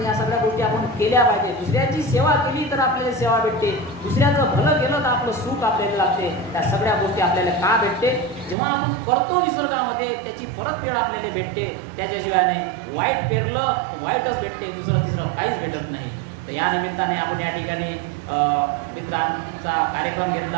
या सगळ्या गोष्टी आपण केल्या पाहिजे. दुसऱ्याची सेवा केली तर आपल्याला सेवा भेटते, दुसऱ्याचं भलं केलं तर आपलं सुख आपल्याला लागते. त्या सगळ्या गोष्टी आपल्याला का भेटते? जेव्हा आपण करतो निसर्गामध्ये त्याची परतफेड आपल्याला भेटते. त्याच्याशिवाय नाही, वाईट पेरलं वाईटच भेटते, तिसरं काहीच भेटत नाही. तर या निमित्ताने आपण या ठिकाणी मित्रांचा कार्यक्रम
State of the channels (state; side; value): drops out; left; at 8.6 s